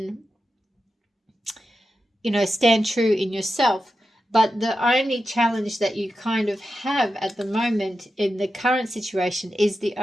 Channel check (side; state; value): both; normal; correlation 0.90